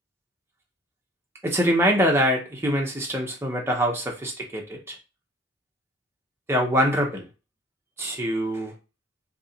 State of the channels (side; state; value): both; normal; correlation 0.49